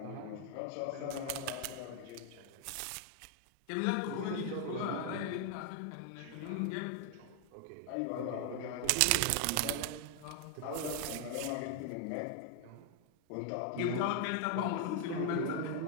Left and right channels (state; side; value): different; both; correlation 0.00